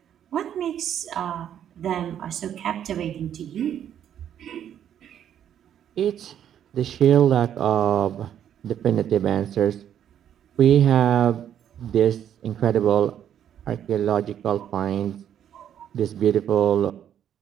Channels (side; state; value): left; quieter; 9.8 dB